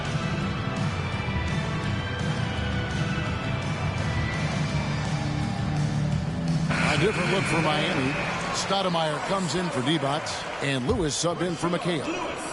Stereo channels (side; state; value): both; identical; correlation 1.00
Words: A different look for Miami. Stoudemire comes in for Divac, and Lewis subbed in for McHale.